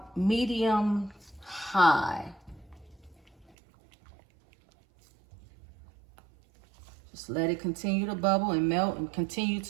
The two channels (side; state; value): left; drops out; at 3.5 s